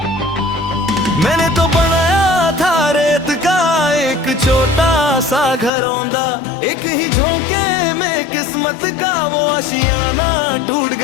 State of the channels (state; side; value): drops out; right; at 5.7 s